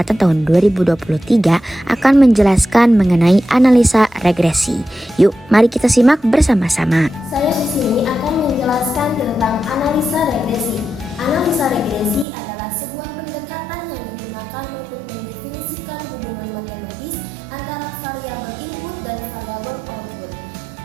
tahun 2023 akan menjelaskan mengenai analisa regresi. Yuk, mari kita simak bersama-sama. Saya di sini akan menjelaskan tentang analisa regresi. Analisa regresi adalah sebuah pendekatan yang digunakan untuk mendefinisikan hubungan matematis antara variabel input dan variabel output.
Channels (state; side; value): drops out; left; at 12.2 s